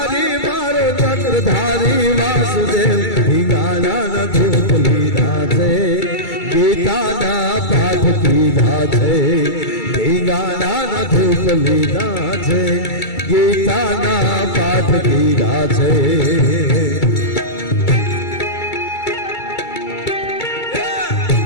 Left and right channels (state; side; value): late; right; 2.3 ms